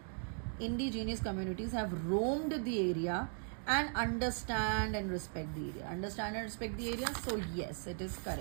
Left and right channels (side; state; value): left; silent; 52 dB below the other